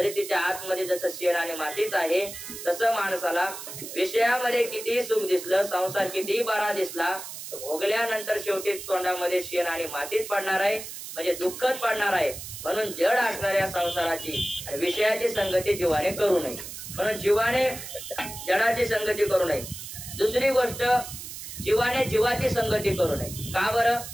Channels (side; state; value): right; noise; hiss, 10 dB below the sound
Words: तिच्या आतमध्ये जसं शेण आणि मातीच आहे, तसं माणसाला विषयामध्ये कितीही सुख दिसलं, संसार कितीही बरा दिसला, भोगल्यानंतर शेवटी तोंडामध्ये शेण आणि मातीच पडणार आहे, म्हणजे दुःखच पडणार आहे. म्हणून जड असणाऱ्या संसाराची आणि विषयाची संगती जीवाने करू नये. म्हणून जीवाने जडाची संगती करू नये. दुसरी गोष्ट, जीवाने जीवाची संगती करू नये. का बरं?